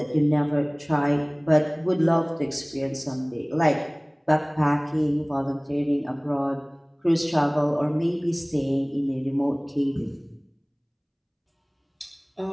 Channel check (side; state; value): both; identical; correlation 1.00